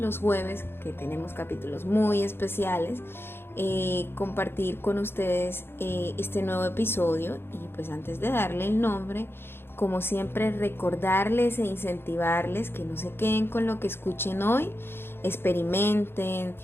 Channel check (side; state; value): right; late; 0.11 ms